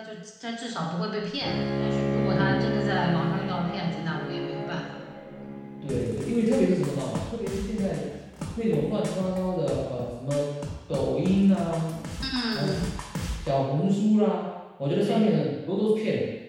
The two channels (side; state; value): both; identical; correlation 1.00